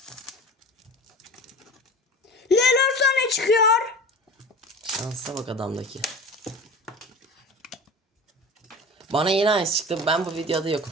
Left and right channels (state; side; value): normal; both; correlation 0.36